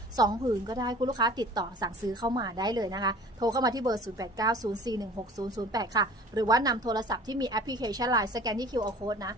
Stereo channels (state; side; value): normal; both; correlation 0.45